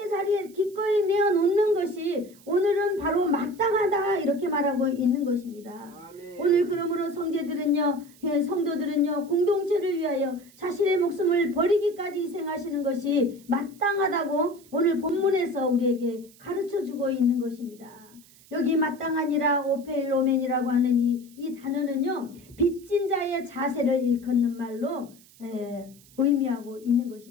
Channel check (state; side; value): noise; right; hiss, 26 dB below the sound